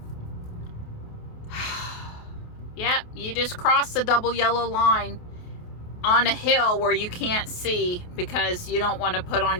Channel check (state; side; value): late; right; 28 ms